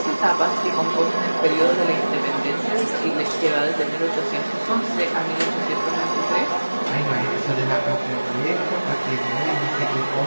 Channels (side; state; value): both; inverted; correlation -1.00